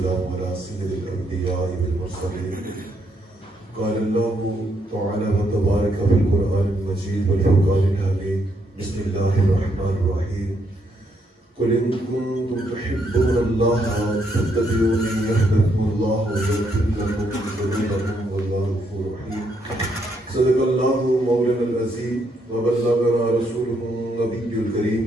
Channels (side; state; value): both; normal; correlation 0.75